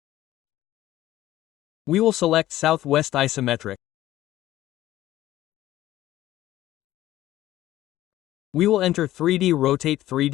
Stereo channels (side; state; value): right; quieter; 14.6 dB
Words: We will select Southwest Isometric. We will enter 3D Rotate